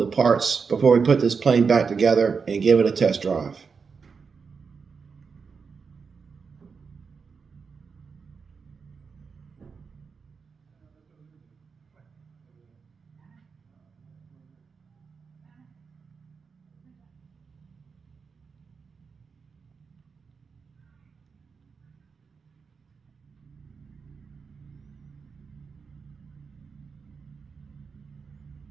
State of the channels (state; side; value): quieter; left; 5.4 dB